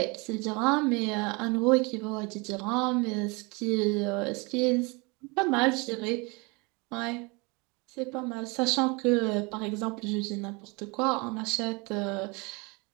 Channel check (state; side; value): quieter; left; 28.1 dB